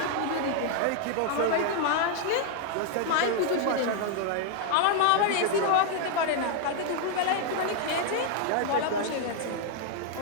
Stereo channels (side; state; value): both; different; correlation 0.00